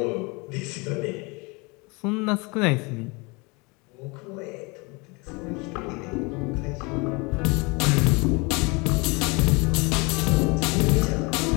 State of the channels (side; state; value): right; quieter; 28.0 dB